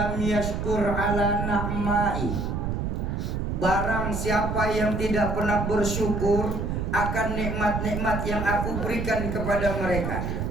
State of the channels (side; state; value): right; noise; rumble, 2 dB below the sound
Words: yashkur ala na'mai. Barang siapa yang tidak pernah bersyukur akan nikmat-nikmat yang aku berikan kepada mereka.